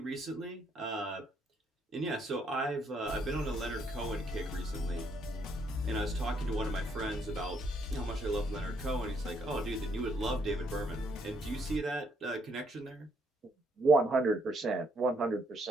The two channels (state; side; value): normal; both; correlation 0.71